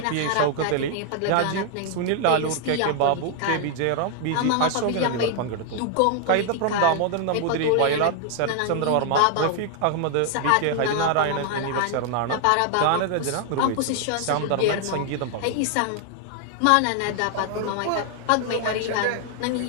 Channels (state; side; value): different; both; correlation 0.00